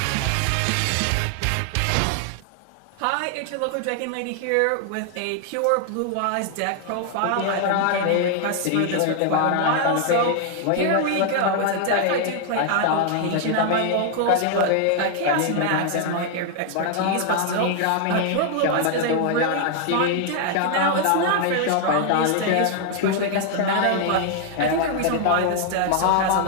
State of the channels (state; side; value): different; both; correlation 0.00